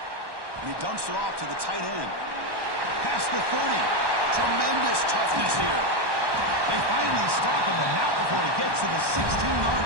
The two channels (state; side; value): late; left; 1.1 ms